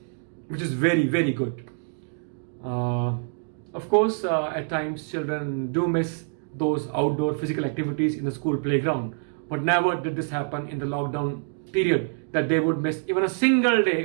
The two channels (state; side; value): silent; left; 60 dB below the other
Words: which is very, very good. Of course, at times children do miss those outdoor physical activities in the school playground, but never did this happen in the lockdown period that they would miss even a single